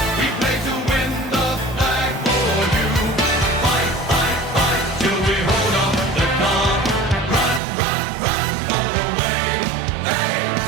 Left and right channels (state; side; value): drops out; left; at 7.6 s